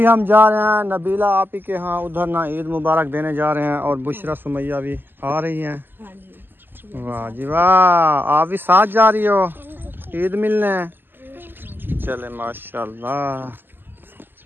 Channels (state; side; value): late; left; 0.094 ms